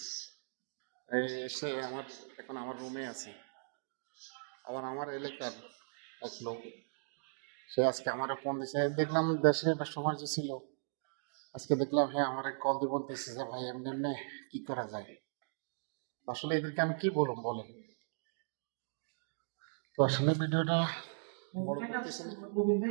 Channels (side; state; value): left; silent; digital silence